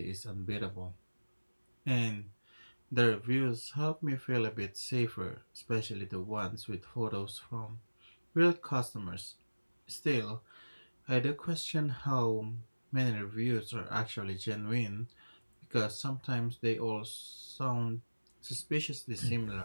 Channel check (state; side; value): inverted; both; correlation -1.00